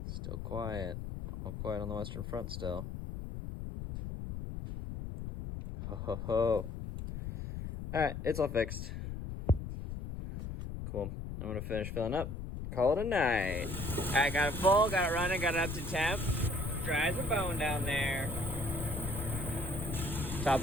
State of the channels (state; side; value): noise; left; rumble, 6 dB below the sound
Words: Still quiet. All quiet on the western front still. Ho ho ho. Alright, it's all fixed. Cool. I'm gonna finish filling up. Call it a night. Alright, got it full, got it running, got it up to temp. Dry as a bone down there. Top